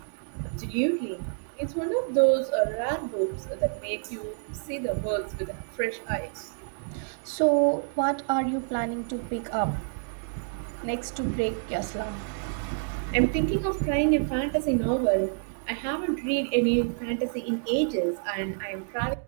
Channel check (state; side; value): silent; left; digital silence